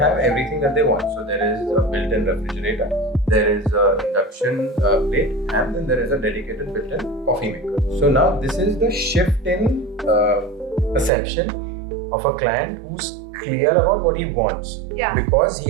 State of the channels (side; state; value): left; drops out; at 11.1 s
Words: everything that they want. So there is a built-in refrigerator, there is an induction plate, and then there is a dedicated built-in coffee maker. So now this is the shift in perception of a client who's clear about what he wants, because